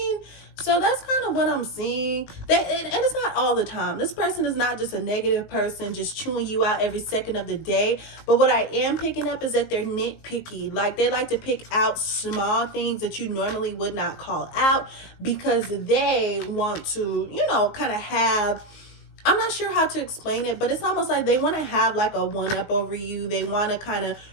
So that's kind of what I'm seeing. And it's not all the time. This person is not just a negative person just chewing you out every second of the day. But what I am picking up is that they're nitpicky. Like, they like to pick out small things that you normally would not call out, because they want to, kind of have, I'm not sure how to explain it, but it's almost like they want to have like a one-up over you. They want to kind of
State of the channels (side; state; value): right; late; 19 ms